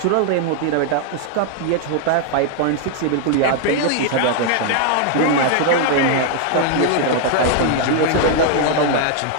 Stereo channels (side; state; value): both; different; correlation 0.00